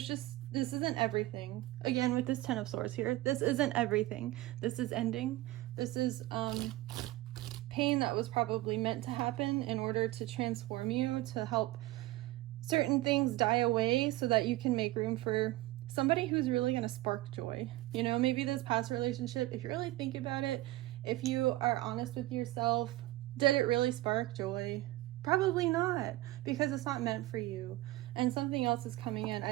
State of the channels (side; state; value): left; quieter; 17.7 dB